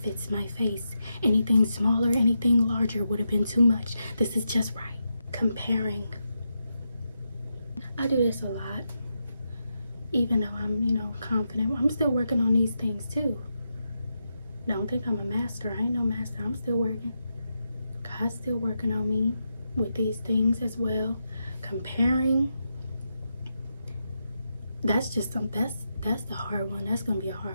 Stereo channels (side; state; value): both; inverted; correlation -0.86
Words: my face. Anything smaller, anything larger would have been too much. This is just right. Comparing. I do this a lot. Even though I'm, confident. I'm still working on these things too. Don't think I'm a master. I ain't no master. I'm still working. God's still working on me with these things as well. Comparing. That's just something. That's the hard one. That's gonna be a